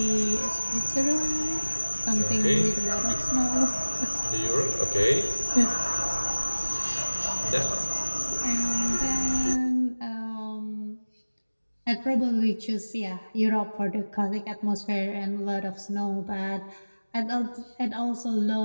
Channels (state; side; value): inverted; both; correlation -1.00